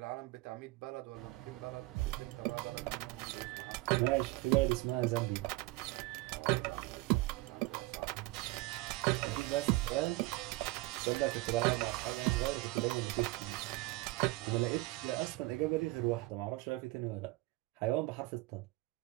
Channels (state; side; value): quieter; left; 20.8 dB